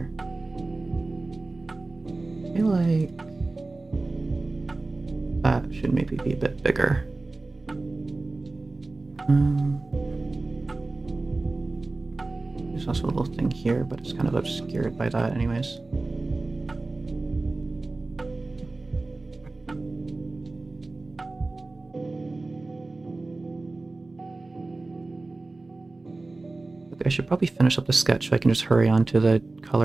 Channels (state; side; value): quieter; left; 3.3 dB